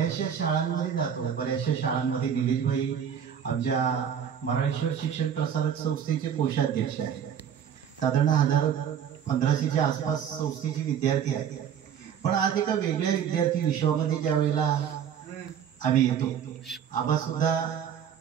शाळांमध्ये जातो, बऱ्याचशा शाळांमध्ये निलेशभाई आमच्या मराठेश्वर शिक्षण प्रसारक संस्थेचे कोषाध्यक्ष आहेत. साधारण 1500च्या आसपास संस्थेचे विद्यार्थी आहेत. पण आज एका वेगळ्या विद्यार्थी विश्वामध्ये ज्या वेळेला आम्ही येतो, आबा सुद्धा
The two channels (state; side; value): quieter; left; 8.5 dB